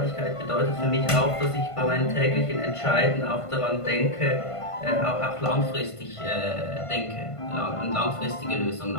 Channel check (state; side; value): late; right; 1.5 ms